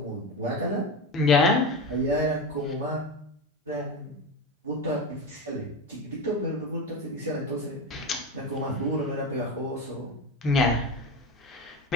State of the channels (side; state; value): both; normal; correlation 0.21